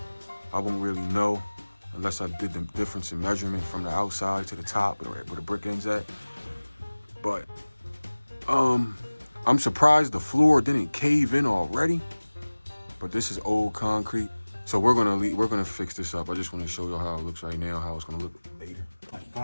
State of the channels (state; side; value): inverted; both; correlation -1.00